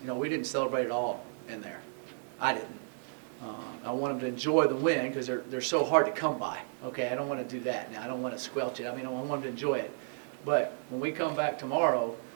You know, we didn't celebrate it all in there. I didn't. I want them to enjoy the win because they're so hard to come by. Okay, I don't want to do that now. I don't want to squelch it. I mean, I want them to enjoy it. But when we come back tomorrow,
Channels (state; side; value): silent; left; digital silence